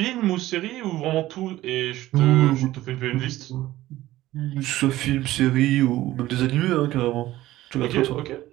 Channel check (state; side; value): quieter; left; 15.8 dB